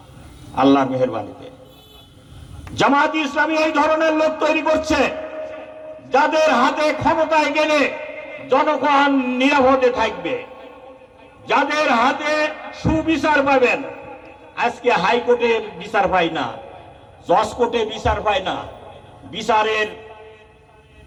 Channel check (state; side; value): identical; both; correlation 1.00